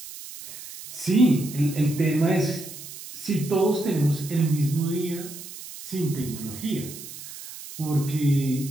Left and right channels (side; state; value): right; noise; hiss, 13 dB below the sound